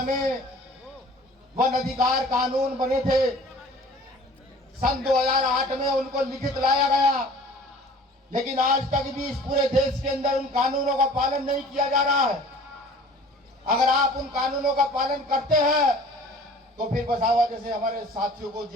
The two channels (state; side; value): normal; both; correlation 0.47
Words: में वन अधिकार कानून बने थे। सन 2008 में उनको लिखित लाया गया, लेकिन आज तक भी इस पूरे देश के अंदर उन कानूनों का पालन नहीं किया जा रहा है। अगर आप उन कानूनों का पालन करते हैं तो फिर वसावा जैसे हमारे साथियों को